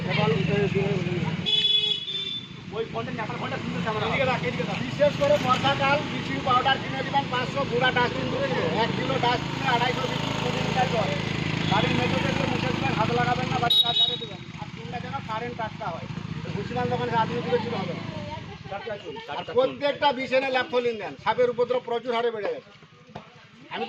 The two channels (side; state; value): both; identical; correlation 1.00